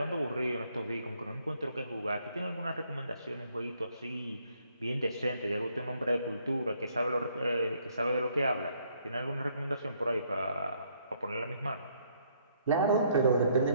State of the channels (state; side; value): inverted; both; correlation -0.69